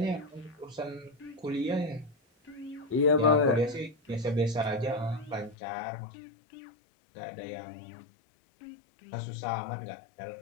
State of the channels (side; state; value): right; drops out; at 5.6 s